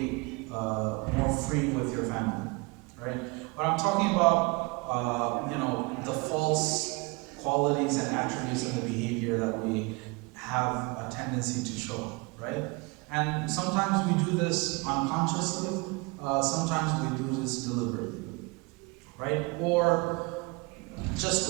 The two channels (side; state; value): left; quieter; 27.4 dB